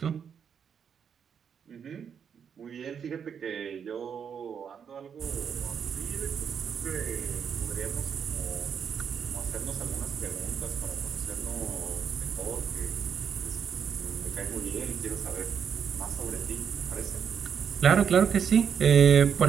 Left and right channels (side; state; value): left; quieter; 7.4 dB